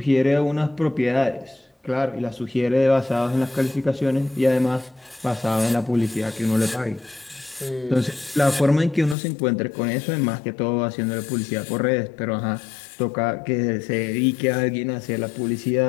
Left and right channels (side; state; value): right; drops out; at 9.2 s